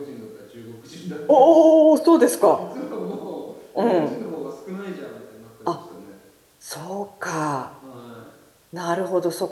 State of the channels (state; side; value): identical; both; correlation 1.00